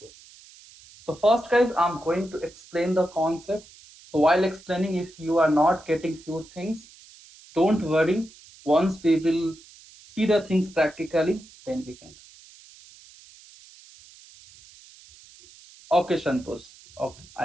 So first, guys, I'm going to explain the concept. So while explaining, if you are not getting few things, don't worry. Once we will see the things practically, then we can. Okay, Santosh. Okay,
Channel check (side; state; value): right; noise; hiss, 23 dB below the sound